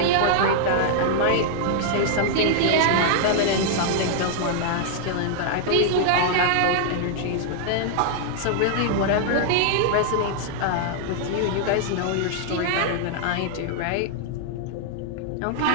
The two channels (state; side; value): different; both; correlation -0.01